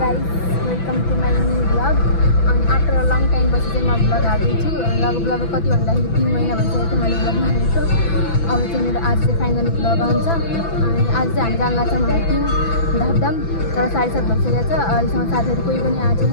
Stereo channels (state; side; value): late; right; 6.0 ms